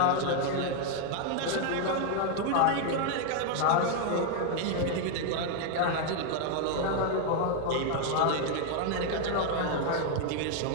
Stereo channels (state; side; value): different; both; correlation 0.00